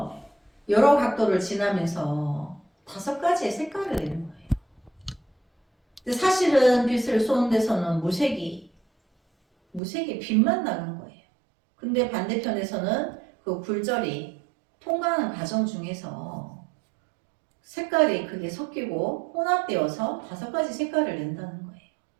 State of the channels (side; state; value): left; drops out; at 9.8 s